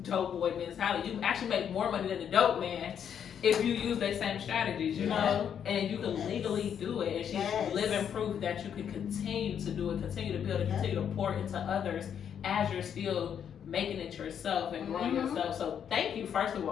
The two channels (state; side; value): quieter; right; 8.4 dB